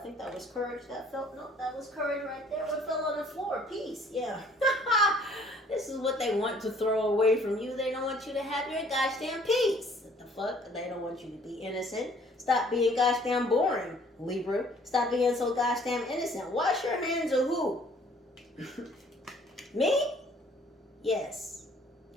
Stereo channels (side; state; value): both; normal; correlation 0.58